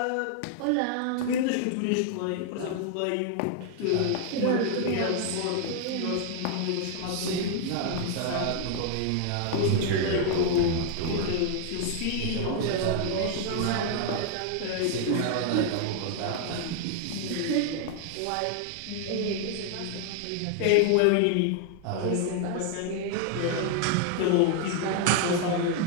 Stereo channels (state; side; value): different; both; correlation 0.00